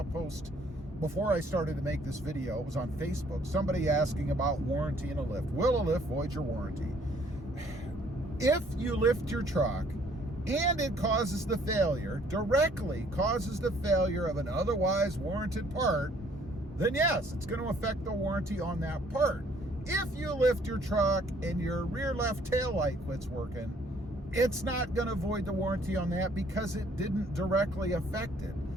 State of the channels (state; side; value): normal; both; correlation 0.61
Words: post before I started to make this video. It was on Facebook. Somebody asking about warranty in a lift. Will a lift void your warranty? If you lift your truck and it causes the failure, directly causes the failure of an otherwise warranted part, then yes, it's going to affect the warranty on that part. If you lift your truck and your rear left taillight quits working, it's not going to void the warranty on that because it didn't directly affect it.